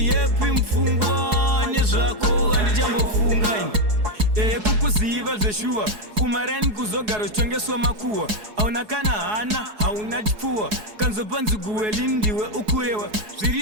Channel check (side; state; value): left; late; 4.7 ms